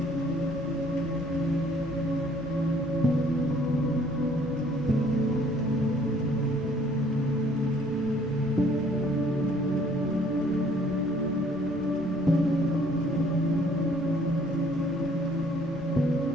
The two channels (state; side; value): normal; both; correlation 0.60